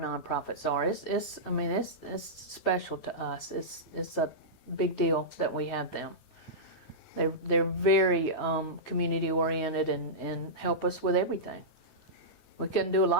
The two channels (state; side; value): late; right; 9.1 ms